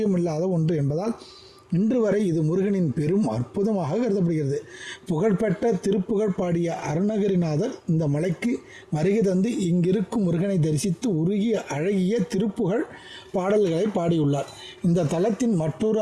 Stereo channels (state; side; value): identical; both; correlation 1.00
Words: ஒன்று என்பதால் இன்று வரை இது முருகனின் பெரும் அற்புதமாக கருதப்படுகிறது. புகழ்பெற்ற திருப்புகழ் பாடிய அருணகிரிநாதர் இந்த மலைக்கு வருகை தந்து இங்கிருக்கும் முருகனை தரிசித்து உருகிய அழகிய திருப்புகழ் பாடல்களை பாடியுள்ளார். இந்த தலத்தின் மற்றொரு